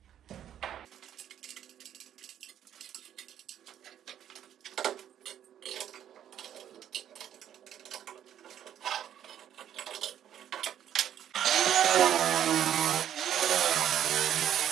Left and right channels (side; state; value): left; quieter; 10.3 dB